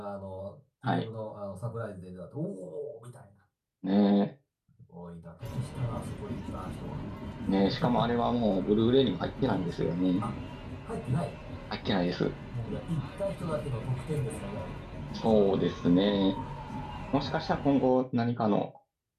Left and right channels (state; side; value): identical; both; correlation 1.00